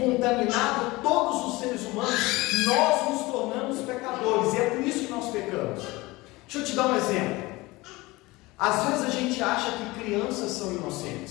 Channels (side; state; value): right; quieter; 21.4 dB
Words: todos os seres humanos, nós nos tornamos pecadores. E é por isso que nós pecamos. Deixa eu te dar um exemplo. Às vezes a gente acha que crianças são